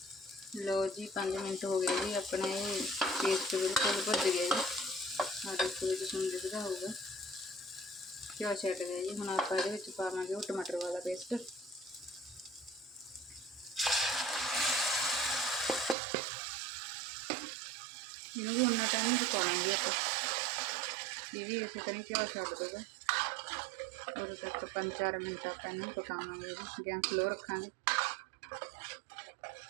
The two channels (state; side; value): drops out; left; at 16.0 s